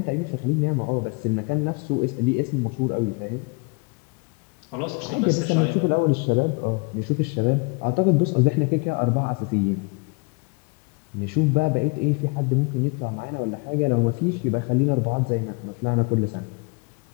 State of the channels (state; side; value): quieter; right; 31.5 dB